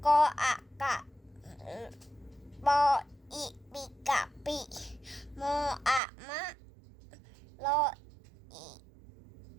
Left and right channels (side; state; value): left; drops out; at 6.0 s